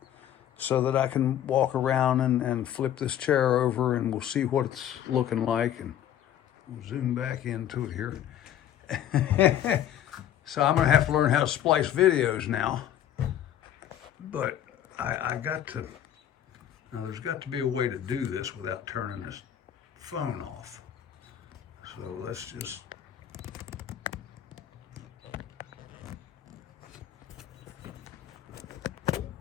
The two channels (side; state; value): right; quieter; 10.8 dB